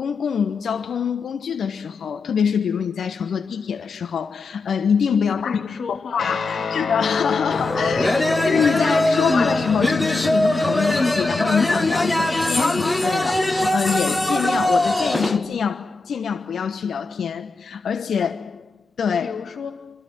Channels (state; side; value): quieter; right; 3.7 dB